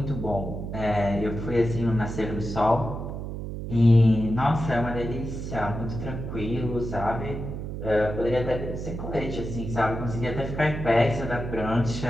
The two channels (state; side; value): noise; right; hum, 6 dB below the sound